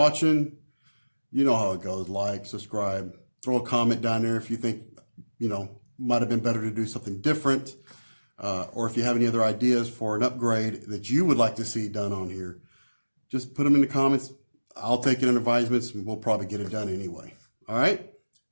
You know how it goes. Like, subscribe, throw a comment down there if you think, you know, might have been better to do something different. Or if you have any other ideas for an upgrade that you would like to see done on here, just put them in the comments. I'll take it in advisements and we'll probably get it done anyway. All right.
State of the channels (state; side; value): inverted; both; correlation -1.00